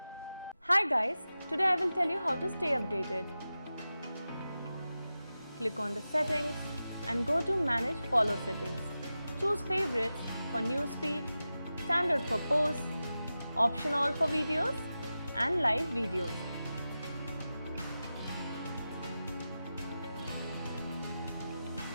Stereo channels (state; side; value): inverted; both; correlation -0.93